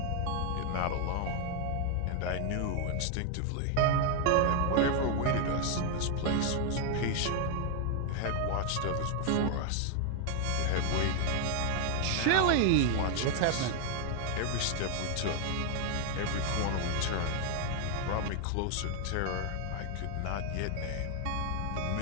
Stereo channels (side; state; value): both; different; correlation 0.00